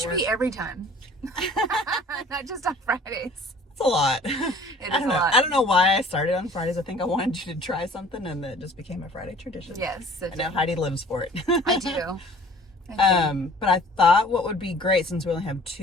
be every time. Not just on Fridays. It's a lot. It I is don't a know. lot. I don't know why I started on Fridays. I think I wanted you to try something, and it just became a Friday tradition. Yes. I know Heidi lives for it. I do. But I thought what would be great, since we only have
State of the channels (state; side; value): normal; both; correlation 0.50